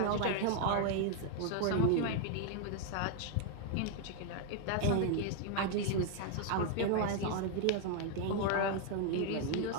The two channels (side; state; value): both; different; correlation 0.00